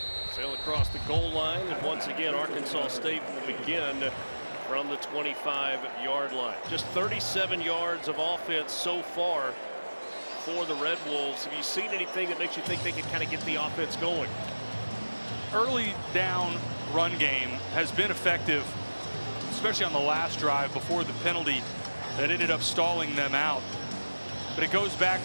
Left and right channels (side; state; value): both; inverted; correlation -1.00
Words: sail across the goal line, and once again Arkansas State will begin from the 25-yard line. Just 37 yards of offense so far for the Red Wolves. Have you seen anything that makes you think they can kind of get the offense going? Early down run game has been effective. especially on the last drive before the penalty that ended up stalling them out. But it goes